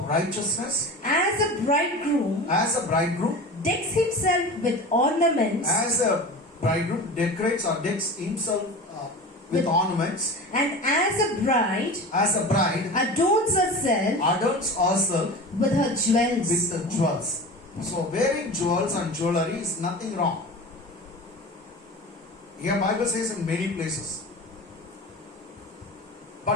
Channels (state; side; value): normal; both; correlation 0.33